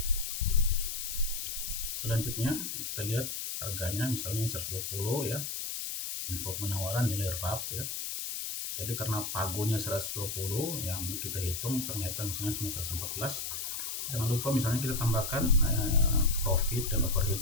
Selanjutnya kita lihat harganya, misalnya 120 ya, info penawaran nilai RAP ya. Jadi karena pagonya 120 yang kita hitung ternyata misalnya cuma 114, jangan lupa misalnya kita tambahkan profit dan overhead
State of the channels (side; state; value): left; noise; hiss, 4 dB below the sound